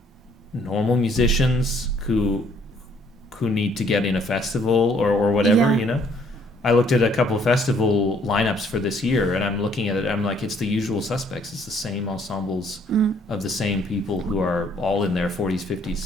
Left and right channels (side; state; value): both; normal; correlation 0.64